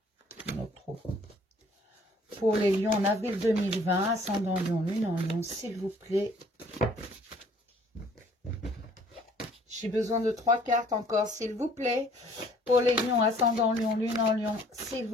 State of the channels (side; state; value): both; normal; correlation 0.57